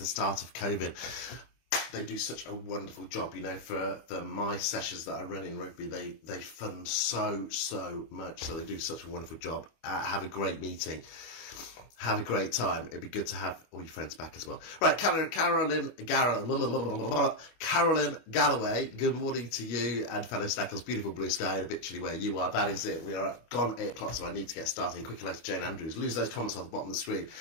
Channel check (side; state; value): right; late; 25 ms